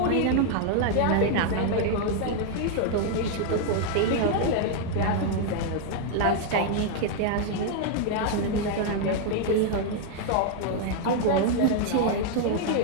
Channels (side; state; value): both; different; correlation 0.00